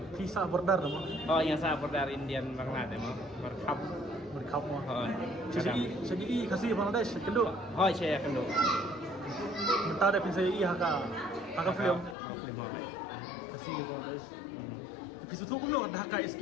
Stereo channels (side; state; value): right; drops out; at 12.2 s